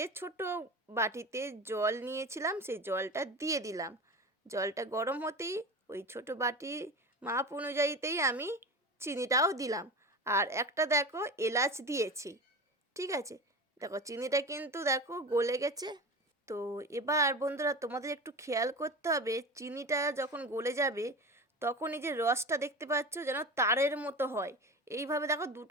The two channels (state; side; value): normal; both; correlation 0.29